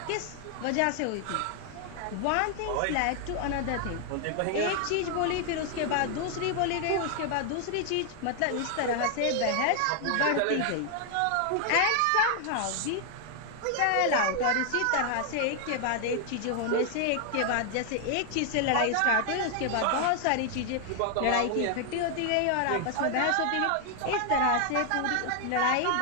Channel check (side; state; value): both; different; correlation 0.00